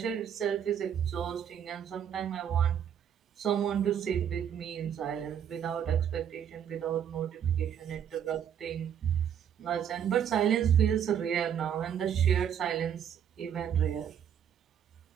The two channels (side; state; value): left; quieter; 8.9 dB